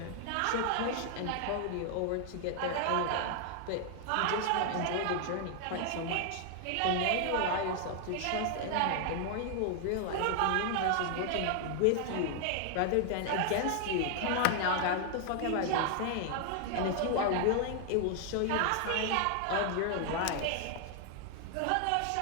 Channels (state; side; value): different; both; correlation 0.00